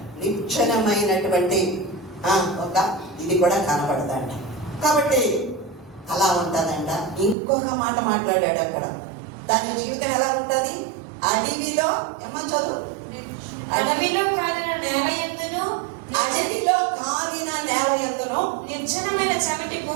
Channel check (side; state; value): left; drops out; at 7.4 s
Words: నిశ్చలమైనటువంటి ఒక ఇది కూడా కనపడదంట. కాబట్టి అలా ఉంటుందంట. ఇంకొక మాట మాట్లాడాడు అక్కడ, దాని జీవితం ఎలా ఉంటుంది? అడవిలో ఏమని చదువు? అడవిలో కాలిన నేల యందును, అడవిలో కాలిన నేల యందును, నిర్జనమైన చవిటి